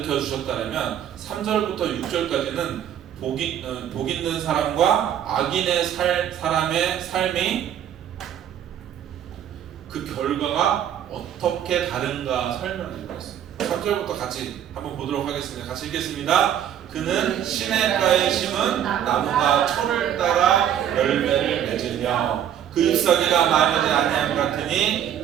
주셨다면 3절부터 6절까지는 복 있는 사람과 악인의 사람의 삶이 그 결과가 어떻게 다른가 설명해 주겠습니다. 3절부터 같이 한번 보도록 하겠습니다. 같이 읽겠습니다. 그는 시냇가에 심은 나무가 철을 따라 열매를 맺으며 그 잎사귀가 마르지 아니함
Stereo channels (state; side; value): quieter; left; 9.9 dB